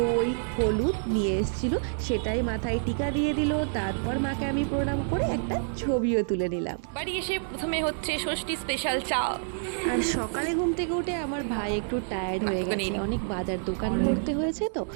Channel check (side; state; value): left; silent; digital silence